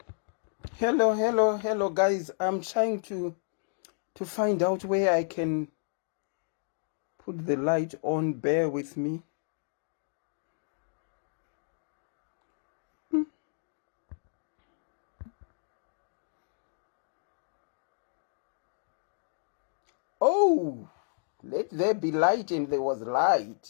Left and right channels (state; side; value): silent; right; digital silence